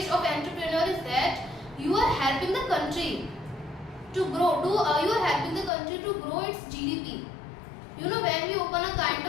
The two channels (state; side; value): drops out; right; at 5.7 s